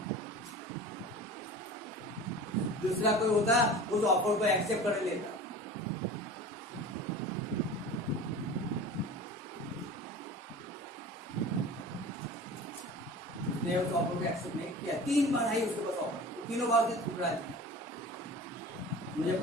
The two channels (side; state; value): both; normal; correlation 0.37